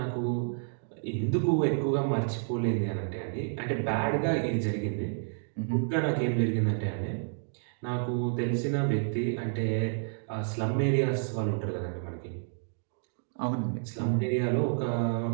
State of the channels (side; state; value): left; silent; digital silence